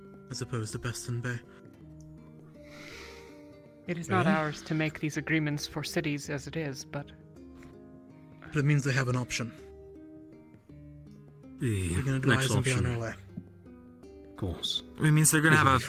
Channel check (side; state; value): both; identical; correlation 1.00